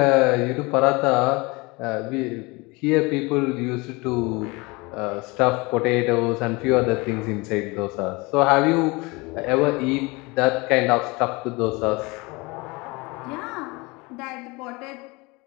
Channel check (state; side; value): quieter; right; 25.3 dB